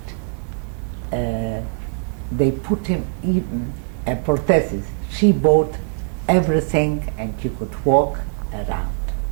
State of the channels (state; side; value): silent; left; 59 dB below the other